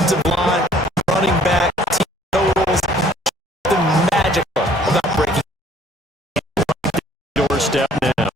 line, running back, team totals. Something magical about breaking Doorstep now.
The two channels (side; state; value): both; normal; correlation 0.58